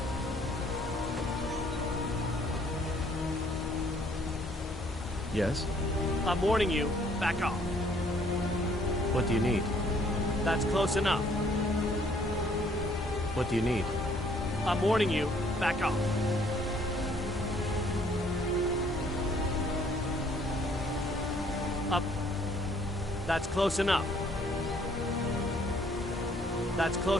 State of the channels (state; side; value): normal; both; correlation 0.63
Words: Yes? I'm warning you, back off. What do you need? That's close enough. What do you need? I'm warning you, back off. Up. That's close enough. That's